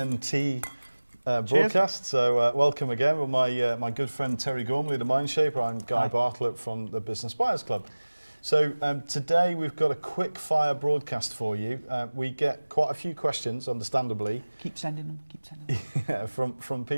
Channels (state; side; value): inverted; both; correlation -1.00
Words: broadcast. So welcome again with my good friend Terry Gormley, the Mindshaper. I'm Guy Bartlett from the Business Buyers Club. So today we've got a quick fire broadcast for you. We get quite a few questions, understandably. Keep sending them, yeah, from